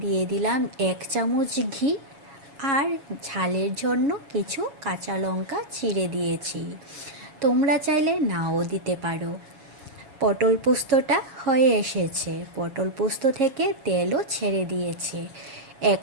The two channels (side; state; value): left; late; 7.3 ms